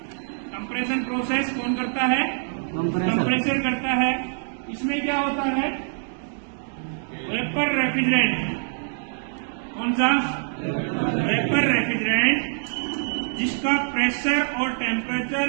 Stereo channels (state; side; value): silent; left; digital silence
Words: कंप्रेशन प्रोसेस कौन करता है? कंप्रेसर करता है। इसमें क्या होता है? Vapour refrigerant. कौन सा? वेपर रेफ्रिजरेंट, जिसका प्रेशर और